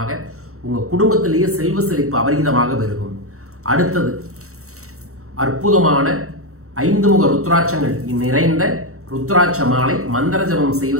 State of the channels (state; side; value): late; left; 0.64 ms